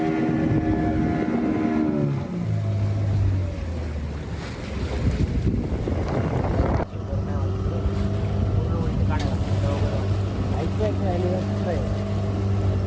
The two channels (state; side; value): identical; both; correlation 1.00